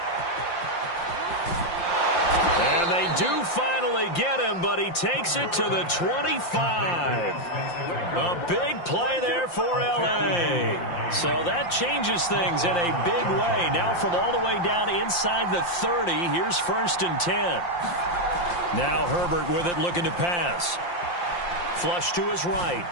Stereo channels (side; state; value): right; late; 5.7 ms